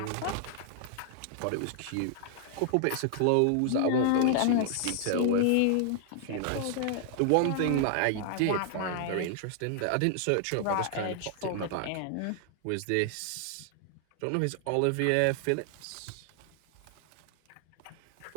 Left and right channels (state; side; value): different; both; correlation 0.00